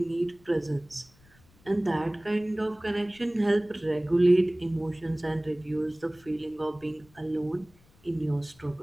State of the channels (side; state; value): left; noise; rumble, 29 dB below the sound